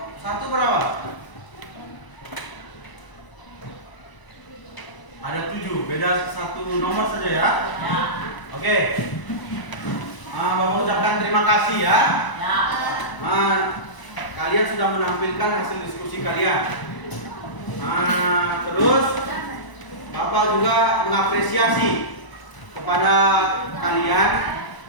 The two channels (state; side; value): late; right; 1.0 ms